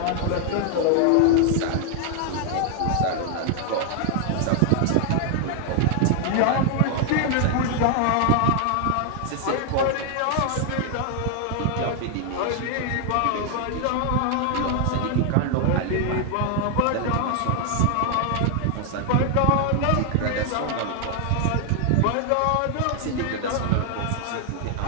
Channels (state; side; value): different; both; correlation 0.00